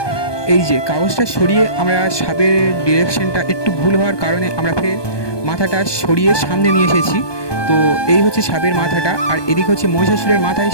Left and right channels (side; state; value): right; late; 1.2 ms